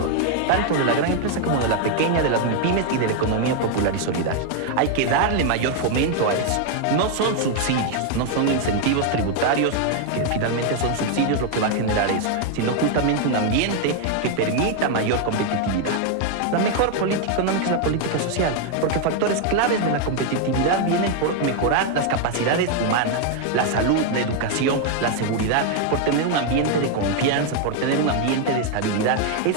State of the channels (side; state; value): both; different; correlation 0.01